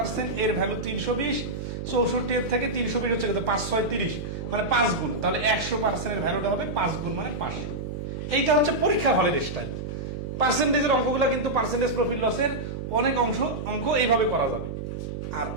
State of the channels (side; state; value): right; noise; hum, 6 dB below the sound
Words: এর ভ্যালু 320, 64 এর থেকে 320 হচ্ছে কত? 5 6 30, মানে 5 গুণ। তাহলে 100% এর ভ্যালুটা হবে 5 গুণ, মানে 500। এইটা হচ্ছে পরীক্ষার হলের স্টাইল। পার্সেন্টেজের অঙ্কগুলো কিন্তু পার্সেন্টেজ প্রফিট লসের অনেক অঙ্ক এইভাবে করা যাবে। আর